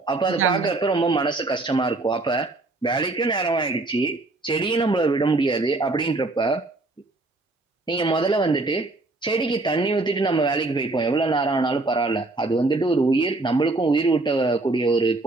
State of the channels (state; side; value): quieter; left; 3.1 dB